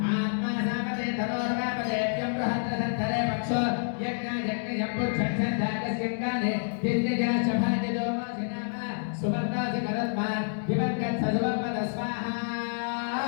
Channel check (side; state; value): right; silent; digital silence